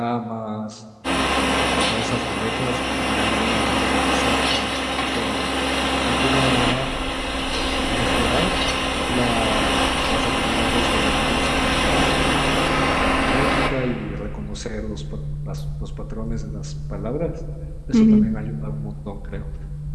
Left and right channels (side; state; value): both; identical; correlation 1.00